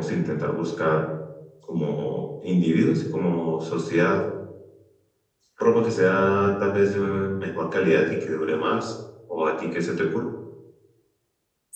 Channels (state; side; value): identical; both; correlation 1.00